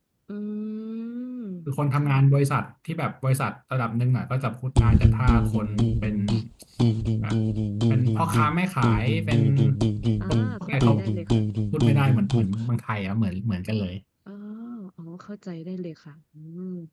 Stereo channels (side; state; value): both; identical; correlation 1.00